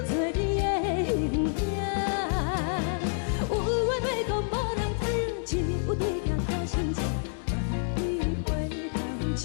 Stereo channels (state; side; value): silent; right; 59 dB below the other